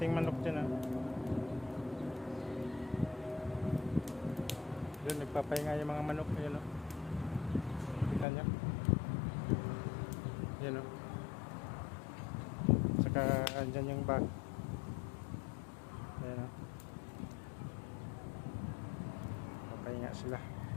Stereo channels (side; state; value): right; drops out; at 8.2 s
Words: manok dyan ah. Yun, nagpapahinga yung mga manok. Ayan oh. Kita nyo? Ayan oh. Saka andyan yung bag. Ayan oh. Papahinga sila.